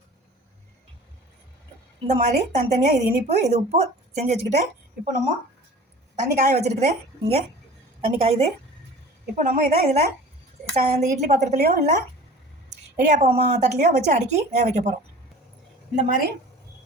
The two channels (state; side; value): normal; both; correlation 0.42